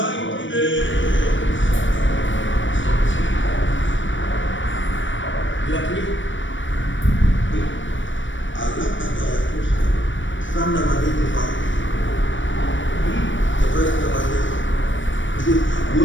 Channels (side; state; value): right; late; 0.56 ms